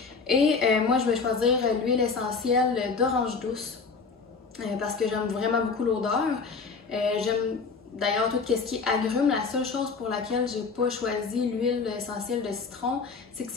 Et moi je vais choisir l'huile essentielle d'orange douce parce que j'aime vraiment beaucoup l'odeur. J'aime d'ailleurs tout ce qui est agrumes. La seule chose pour laquelle j'ai pas choisi l'huile essentielle de citron, c'est que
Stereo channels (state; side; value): quieter; right; 4.8 dB